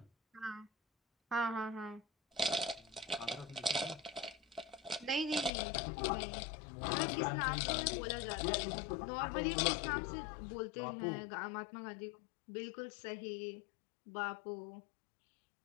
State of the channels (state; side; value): drops out; right; at 5.5 s